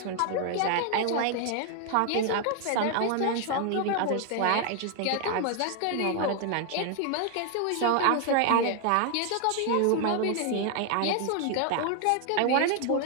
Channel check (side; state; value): both; different; correlation 0.00